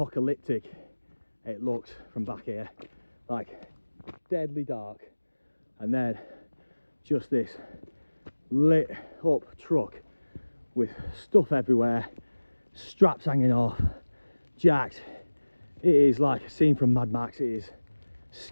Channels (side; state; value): both; inverted; correlation -1.00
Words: it looks from back here, like deadly dark, and then just this lit up truck with stuff everywhere, straps hanging off, jacked. It is like a scene from Mad Max. It is